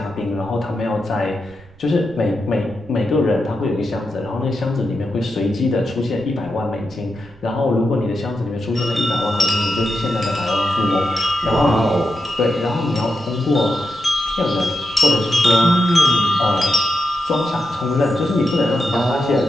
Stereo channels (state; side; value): noise; right; rumble, 24 dB below the sound